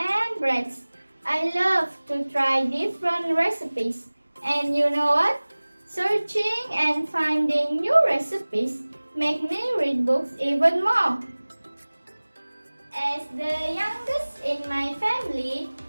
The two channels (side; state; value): both; inverted; correlation -1.00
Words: breads. I love to try different recipes. And you know what? Searching and finding new recipes make me read books even more. As the youngest in my family,